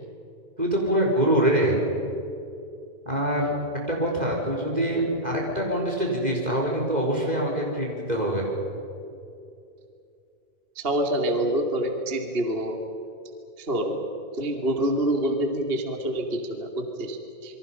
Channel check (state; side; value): late; left; 2.1 ms